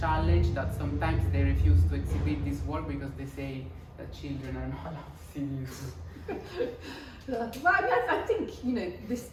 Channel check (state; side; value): identical; both; correlation 1.00